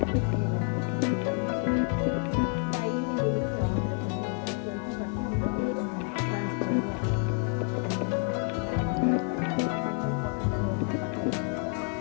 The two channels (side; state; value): right; quieter; 37.8 dB